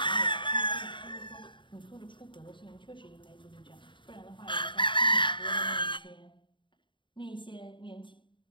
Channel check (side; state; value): right; late; 0.23 ms